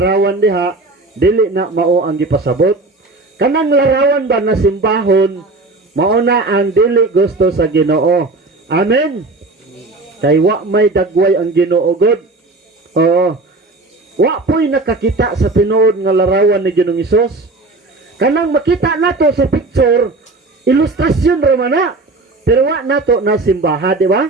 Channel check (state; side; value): quieter; left; 3.3 dB